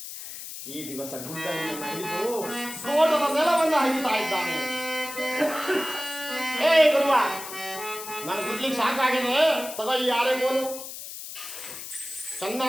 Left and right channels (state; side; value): noise; left; hiss, 10 dB below the sound